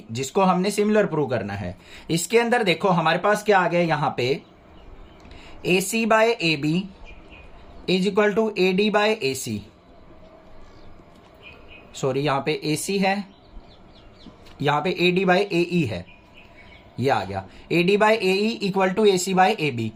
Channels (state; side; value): identical; both; correlation 1.00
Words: जिसको हमने सिमिलर प्रूव करना है, इसके अंदर देखो हमारे पास क्या आ गया, यहां पे AC by AB is equal to AD by AC। Sorry, यहां पे AC है, यहां पे AD बाय AE है, ये आ गया। AD by AE equal to AC by AB,